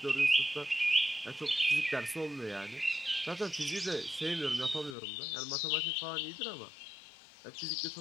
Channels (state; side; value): drops out; right; at 5.0 s